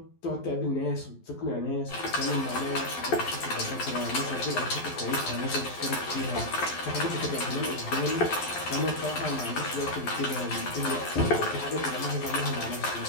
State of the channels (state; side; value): late; right; 12 ms